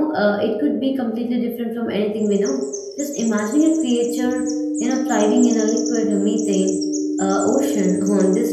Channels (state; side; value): identical; both; correlation 1.00